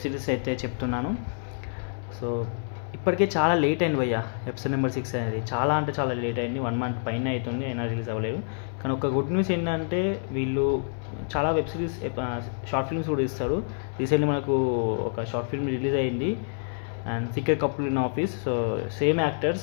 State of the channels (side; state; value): right; silent; digital silence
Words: సిరీస్ అయితే చెప్తున్నాను. సో ఇప్పటికే చాలా లేట్ అయింది భయ్య. ఎపిసోడ్ నెంబర్ 6 అనేది చాలా అంటే చాలా లేట్ అయింది. 1 మంత్ పైన అవుతుంది, అయినా రిలీజ్ అవ్వలేదు. కానీ ఒక గుడ్ న్యూస్ ఏంటంటే వీళ్ళు చాలా వెబ్ సిరీస్ షార్ట్ ఫిల్మ్స్ కూడా ఇస్తారు. రీసెంట్లీ మనకు ఒక షార్ట్ ఫిల్మ్ రిలీజ్ అయింది, and secret couple in office. So same actors